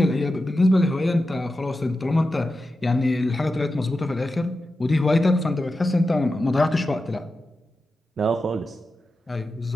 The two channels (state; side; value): normal; both; correlation 0.91